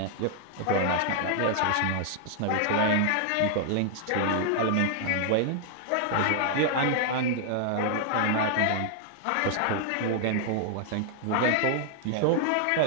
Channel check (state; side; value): different; both; correlation -0.01